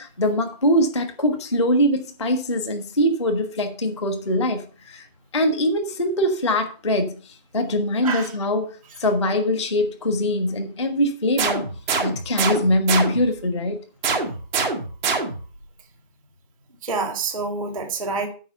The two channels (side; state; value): both; inverted; correlation -0.31